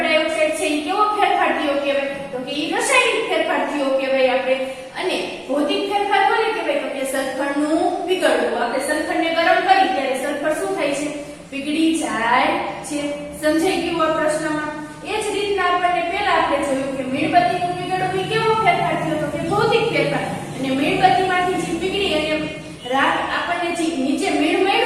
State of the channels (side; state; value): both; identical; correlation 1.00